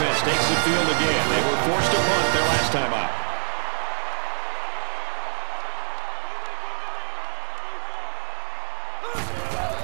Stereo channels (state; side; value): silent; left; 56 dB below the other